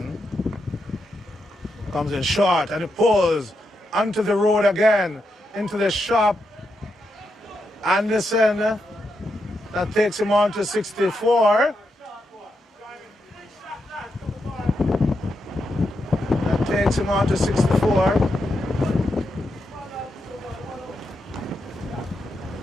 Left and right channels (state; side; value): normal; both; correlation 0.84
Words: Comes in short and it pulls onto the road again, into the shop. Anderson, that takes him on to 64. That takes him on to 64.